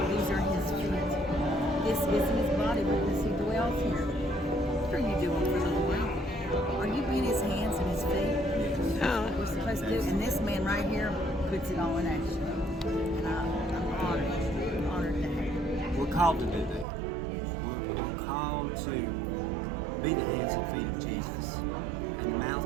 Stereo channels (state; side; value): drops out; left; at 16.9 s